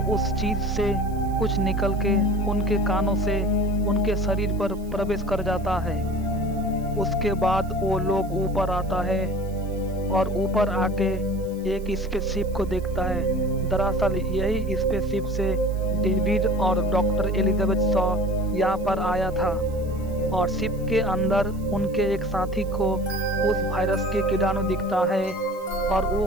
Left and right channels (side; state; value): right; noise; hiss, 25 dB below the sound